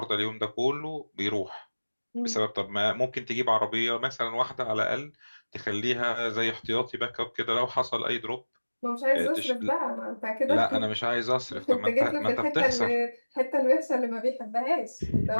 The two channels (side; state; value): both; inverted; correlation -1.00